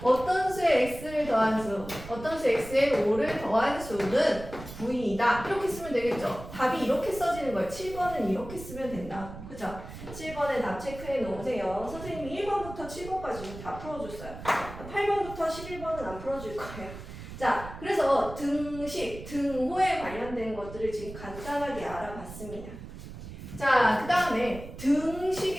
어떤 수에 x를 더한 수, 어떤 수 x에 5를 더한 수는 9이다. 이렇게 쓰면 되겠죠. 답이 이렇게 써지는 거예요. 7번은 이렇게 쓰면 된다. 그죠? 7번에 답 체크해 놓으세요. 선생님이 1번부터 7번까지 다 풀어줬어요. 8번부터 11번은 안 풀어줄 거예요. 자, 그래서 등식, 등호에 관련된 것들을 지금 간단하게 알아봤습니다. 자, 그 다음에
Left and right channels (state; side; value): noise; right; rumble, 13 dB below the sound